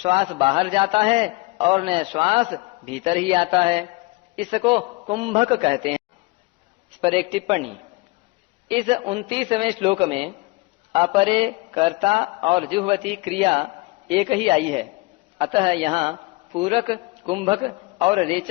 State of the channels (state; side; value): quieter; right; 23.5 dB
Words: बाहर जाता है और न श्वास भीतर ही आता है। इसको कुंभक कहते हैं। इस पर एक टिप्पणी। इस 29वें श्लोक में अपरे कर्ता और जुह्वति क्रिया एक ही आई है, अतः यहाँ पूरक कुंभक और